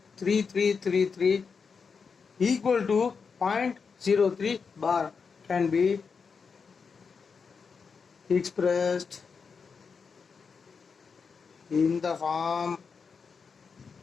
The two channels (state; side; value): quieter; right; 5.5 dB